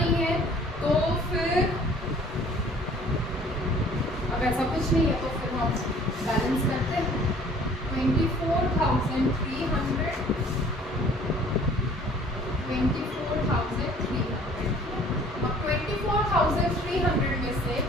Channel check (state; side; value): normal; both; correlation 0.53